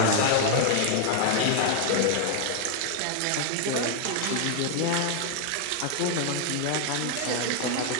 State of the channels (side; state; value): both; different; correlation 0.00